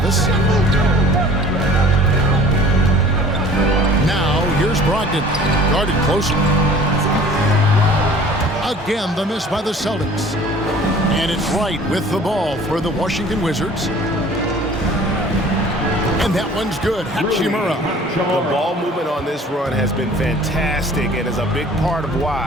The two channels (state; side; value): normal; both; correlation 0.48